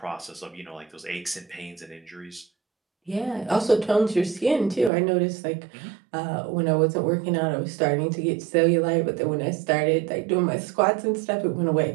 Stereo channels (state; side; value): drops out; left; at 4.9 s